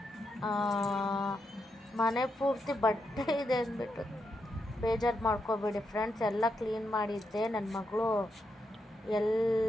ಮನೆ ಪೂರ್ತಿ ಬಟ್ಟೆ ಇದೆ ಅಂದ್ಬಿಟ್ಟು ಬೇಜಾರು ಮಾಡ್ಕೋಬೇಡಿ ಫ್ರೆಂಡ್ಸ್. ಎಲ್ಲ ಕ್ಲೀನ್ ಮಾಡಿದ್ದೆ. ನನ್ನ ಮಗಳು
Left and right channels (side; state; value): both; normal; correlation 0.83